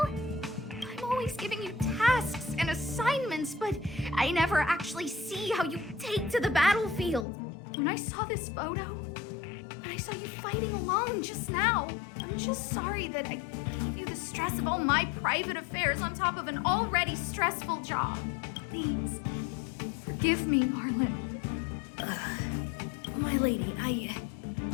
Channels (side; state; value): right; drops out; at 7.2 s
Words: I'm always giving you tasks and assignments, but I never actually see how you take to the battlefield. When I saw this photo, when I saw you fighting alone just now, I'm just sorry that I gave you the stress of all my private affairs on top of an already stressful job. Please, forgive me, Arlen. My lady,